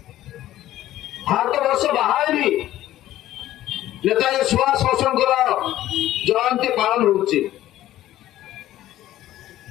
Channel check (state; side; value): quieter; right; 13.9 dB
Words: ভারতবর্ষ বাহারে भी নেতাজী সুভাষ ବୋଷଙ୍କର জয়ন্তী পালন হচ্ছে।